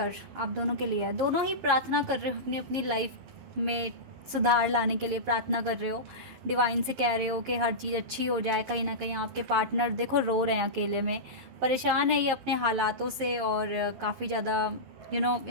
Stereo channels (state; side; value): late; left; 11 ms